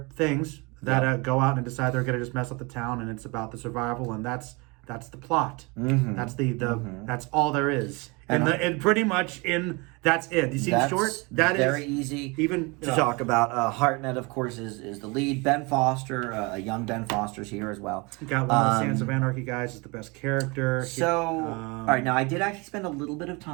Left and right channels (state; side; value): quieter; left; 27.7 dB